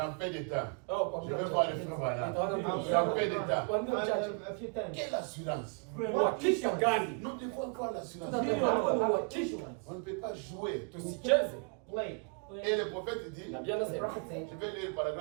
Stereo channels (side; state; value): left; quieter; 36.1 dB